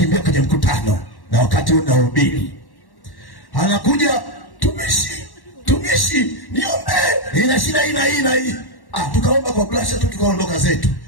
kwenye mkutano, na wakati unahubiri anakuja, tumishi niombe, ina shida hii. Tukaomba kwa blasha tu, tukaondoka zetu.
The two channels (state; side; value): late; right; 1.1 ms